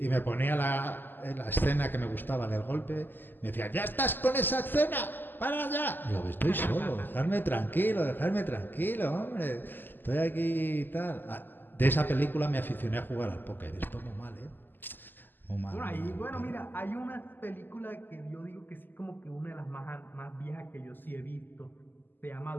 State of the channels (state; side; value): late; right; 0.091 ms